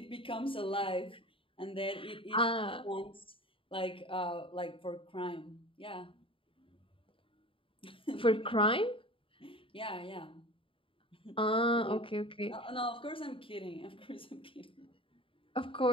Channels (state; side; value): late; right; 0.26 ms